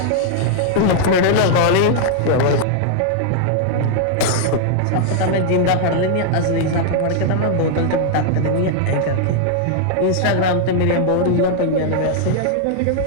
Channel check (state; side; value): different; both; correlation -0.01